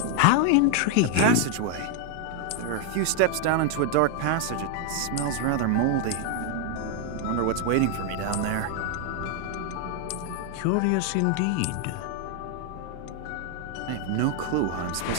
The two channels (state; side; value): different; both; correlation 0.00